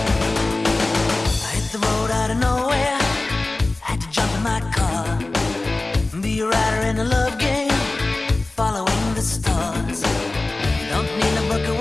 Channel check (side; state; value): right; quieter; 3.0 dB